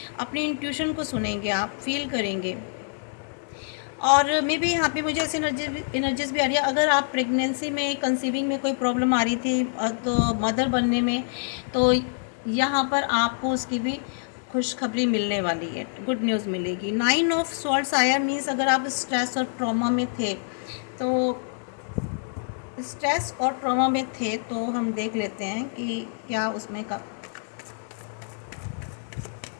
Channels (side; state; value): right; silent; digital silence